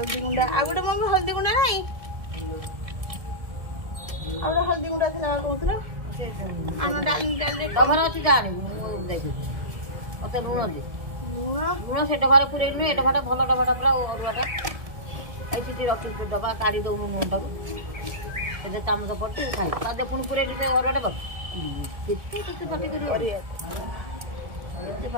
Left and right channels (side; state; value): left; late; 1.7 ms